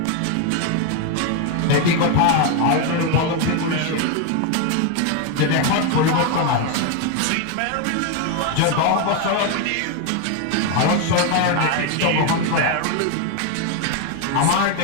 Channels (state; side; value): different; both; correlation 0.02